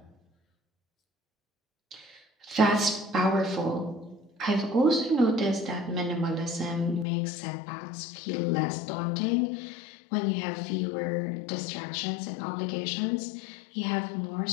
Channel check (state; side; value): drops out; right; at 7.1 s